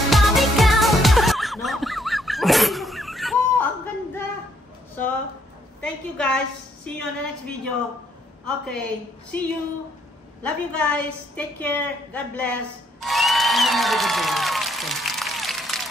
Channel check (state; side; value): normal; both; correlation 0.70